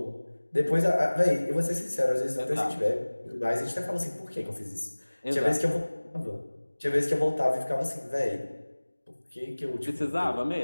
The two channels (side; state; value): both; inverted; correlation -1.00